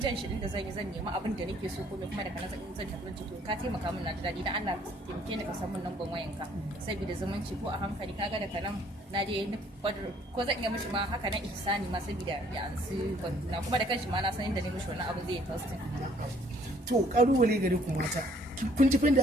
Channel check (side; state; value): both; normal; correlation 0.61